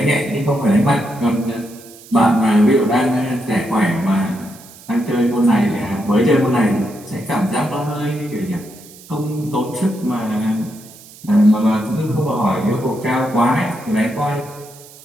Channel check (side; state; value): right; noise; hiss, 21 dB below the sound